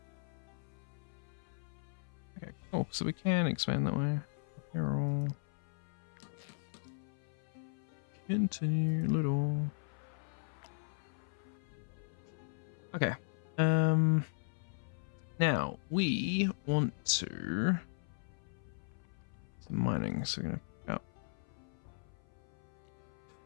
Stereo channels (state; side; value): silent; right; 53 dB below the other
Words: Okay, cool. So we can expand that way. Apparel. Continue little. Okay. Now we want to some mining, so we're gonna pick up.